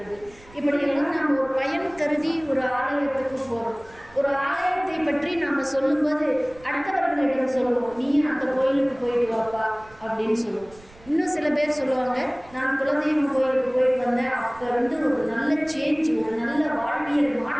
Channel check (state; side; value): noise; right; rumble, 24 dB below the sound